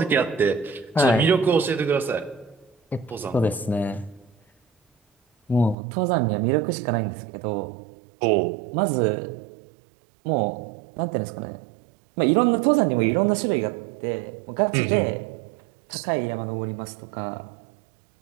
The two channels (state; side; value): drops out; left; at 5.8 s